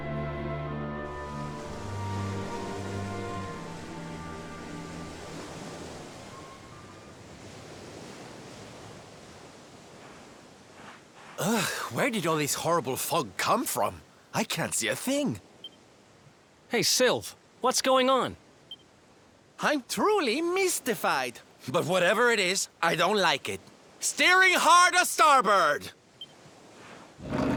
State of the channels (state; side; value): identical; both; correlation 1.00